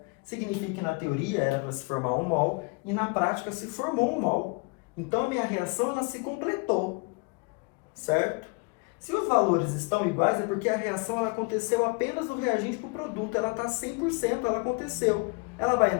Significa que na teoria era para se formar 1 mol e na prática se formou 1 mol. Então, a minha reação ela se completou. Certo? Se os valores estão iguais, é porque a reação ela aconteceu apenas do reagente para o produto. Ela está 100%, ela aconteceu. Ela vai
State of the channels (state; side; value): quieter; right; 30.5 dB